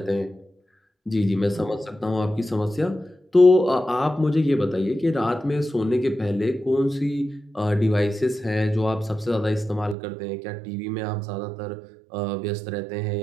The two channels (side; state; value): left; drops out; at 10.0 s